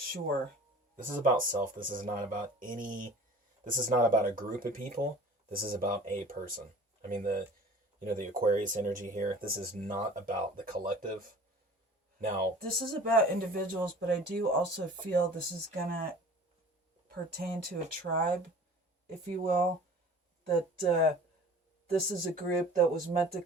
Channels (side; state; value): both; normal; correlation 0.44